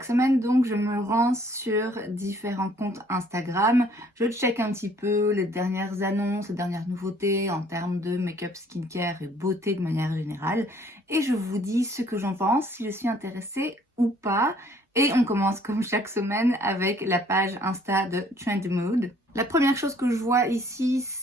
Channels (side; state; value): both; normal; correlation 0.60